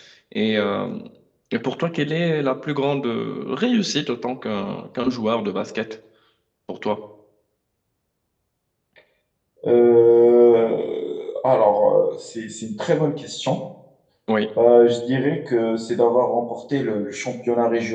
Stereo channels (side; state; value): both; identical; correlation 1.00